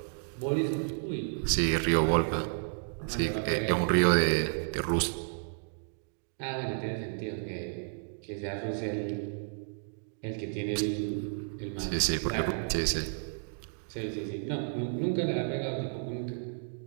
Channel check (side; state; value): left; silent; digital silence